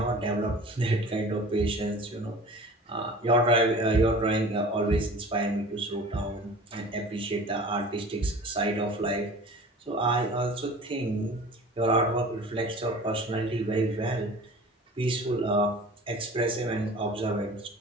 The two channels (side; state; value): both; normal; correlation 0.42